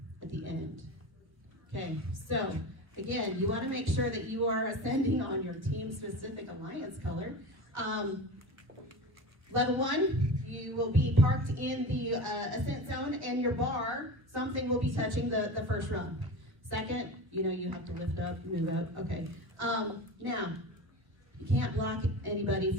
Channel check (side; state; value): left; late; 1.3 ms